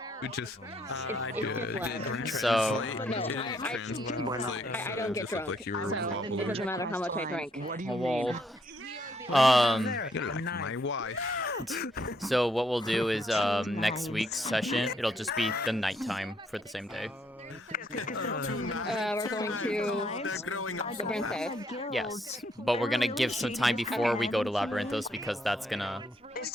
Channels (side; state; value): both; normal; correlation 0.71